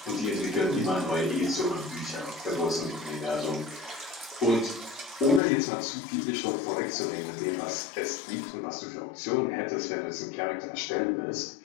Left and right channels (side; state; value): right; drops out; at 5.4 s